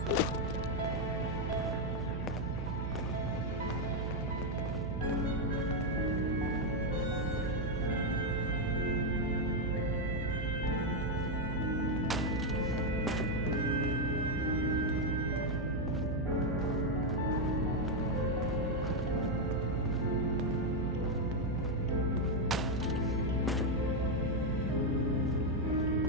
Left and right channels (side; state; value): right; noise; hum, 3 dB below the sound